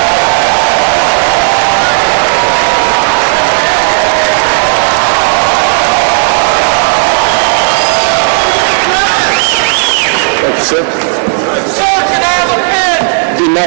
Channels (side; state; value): left; silent; digital silence